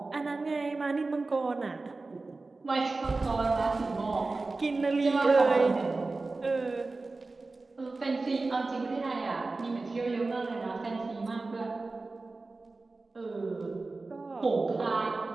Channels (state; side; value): quieter; left; 3.6 dB